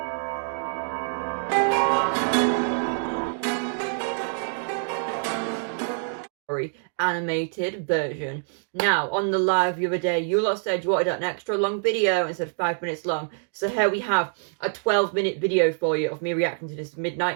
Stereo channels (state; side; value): silent; left; digital silence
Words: story animated version. Now, on the live the other day, you lot said you wanted an extra long video instead of 5 minutes long, so here we have a 12-minute video for you of me reacting to this